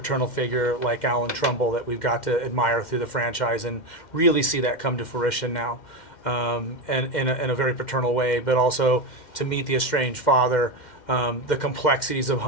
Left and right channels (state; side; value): late; right; 2.1 ms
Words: figure like Allan Trumbull that we've got to admire through the franchise and really see that come to fruition now, and in a very paternal way, but also to meet the estranged father, the complexities of